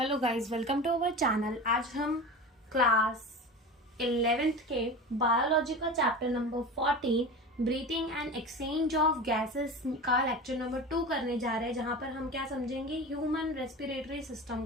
guys, welcome to our channel. आज हम क्लास 11th के बायोलॉजी का chapter number 14 breathing and exchange of gases का लेक्चर नंबर 2 करने जा रहे हैं, जहां पर हम क्या समझेंगे, ह्यूमन रेस्पिरेटरी सिस्टम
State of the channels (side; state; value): both; normal; correlation 0.30